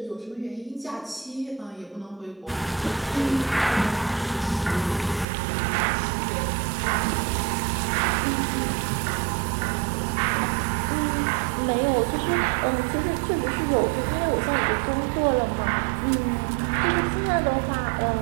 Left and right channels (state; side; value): drops out; left; at 5.2 s